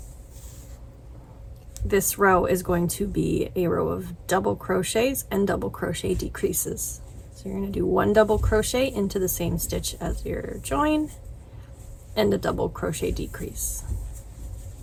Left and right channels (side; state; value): both; identical; correlation 1.00